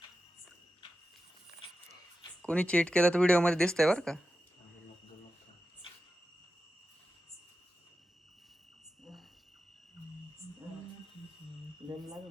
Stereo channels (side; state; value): both; normal; correlation 0.91